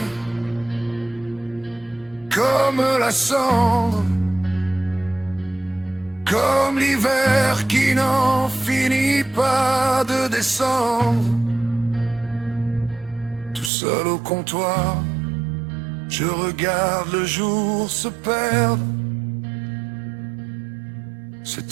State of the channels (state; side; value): drops out; left; at 13.7 s